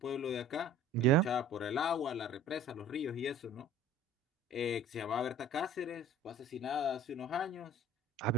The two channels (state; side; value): normal; both; correlation 0.46